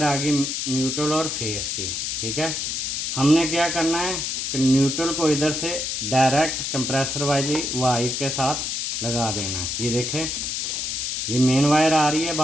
आ गई न्यूट्रल और फेस की। ठीक है, हमने क्या करना है कि न्यूट्रल को इधर से डायरेक्ट कंप्रेसर वाली वायर के साथ लगा देना है। ये देखें, ये मेन वायर आ रही है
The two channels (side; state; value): left; noise; hiss, 2 dB below the sound